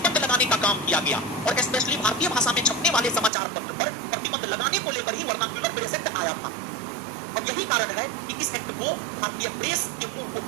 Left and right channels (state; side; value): drops out; left; at 3.3 s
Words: लगाने का काम किया गया। और स्पेशली भारतीय भाषा में छपने वाले समाचार पत्र पर प्रतिबंध लगाने को लेकर ही वर्नाक्यूलर प्रेस एक्ट आया था। और यही कारण है कि इस एक्ट को भारतीय प्रेस के मुंह को